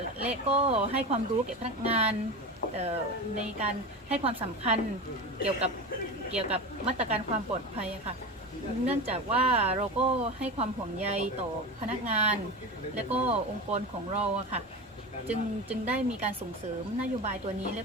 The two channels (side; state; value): both; normal; correlation 0.25